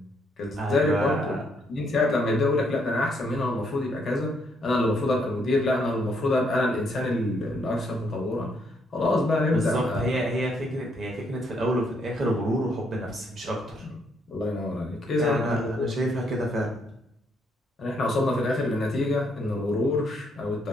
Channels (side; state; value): both; normal; correlation 0.72